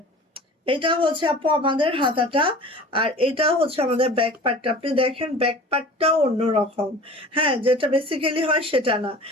এটা হচ্ছে আপু আমাদের হাতাটা, আর এটা হচ্ছে আমাদের ব্যাক পার্টটা। আপনি দেখেন ব্যাক পার্টটাও অন্যরকম। হ্যাঁ যেটা বেসিক্যালি হয় সেটা না,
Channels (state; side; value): normal; both; correlation 0.41